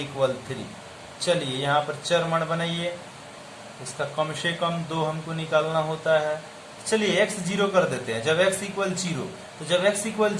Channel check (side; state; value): both; identical; correlation 1.00